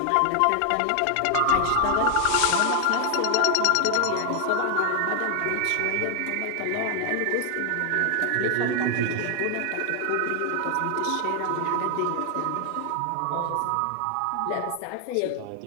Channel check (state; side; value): different; both; correlation 0.00